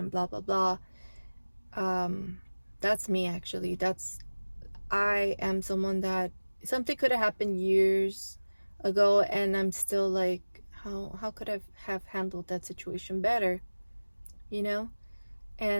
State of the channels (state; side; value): inverted; both; correlation -1.00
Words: blah blah blah. That's me, actually. I am someone that something could have happened years ago and I'm still like, how could I have handled that situation better, you know?